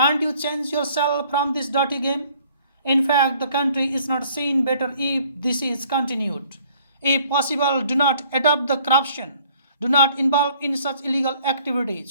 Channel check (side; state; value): both; inverted; correlation -0.59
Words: you change yourself from this dirty game? In fact, the country is not seen better if this is continued. If possible, do not adopt the corruption. Do not involve in such illegal